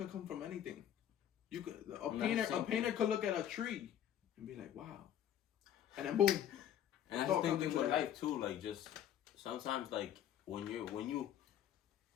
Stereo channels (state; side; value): quieter; right; 10.5 dB